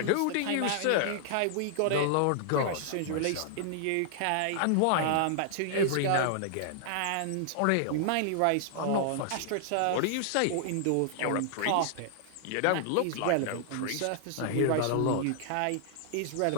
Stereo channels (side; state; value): both; different; correlation -0.01